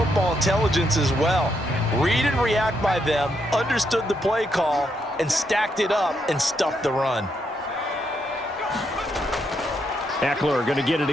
intelligence as well. Read and react by them, understood the play call, and stacked it up and stuffed the run. Eckler going to get it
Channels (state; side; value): normal; both; correlation 0.78